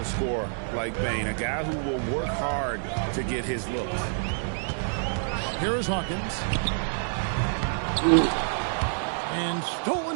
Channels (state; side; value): silent; left; digital silence